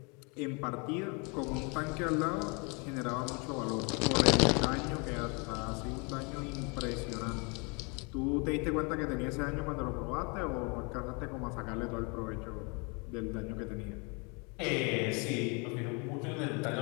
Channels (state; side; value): quieter; right; 32.2 dB